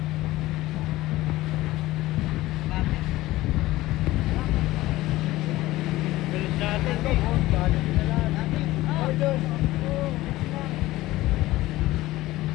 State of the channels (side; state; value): right; quieter; 17.4 dB